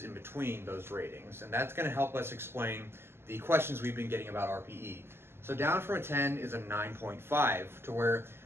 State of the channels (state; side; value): late; left; 0.12 ms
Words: in between those ratings. And that's going to help us explain the questions we've been getting about RPE. So down from a 10 is a 9.5, to where